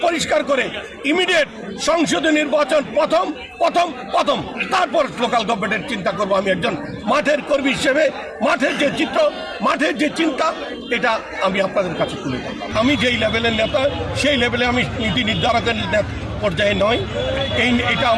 পরিষ্কার করে ইমিডিয়েট সংসদীয় নির্বাচন প্রথম তারপর লোকাল গভর্নমেন্টের চিন্তা করব। আমি একজন মাঠের কর্মী হিসেবে মাঠের যে চিত্র, মাঠের যে চিন্তা, এটা আমি আপনাদের কাছে তুলে ধরলাম। আমি যেই লেভেলের নেতা সেই লেভেলে আমি নীতি নির্ধারকের পর্যায়ে নয়। এটা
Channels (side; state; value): both; identical; correlation 1.00